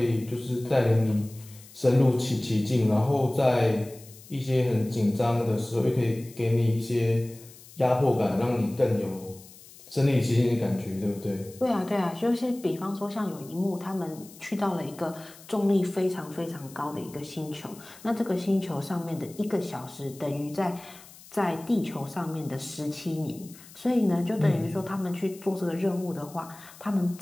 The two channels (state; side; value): noise; left; hiss, 21 dB below the sound